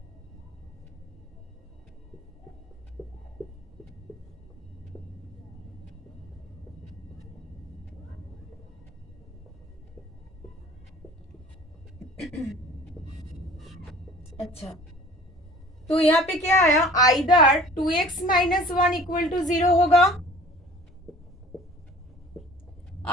अच्छा, तो यहाँ पे क्या आया, either 2x minus 1 equal to 0 होगा,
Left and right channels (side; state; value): both; normal; correlation 0.47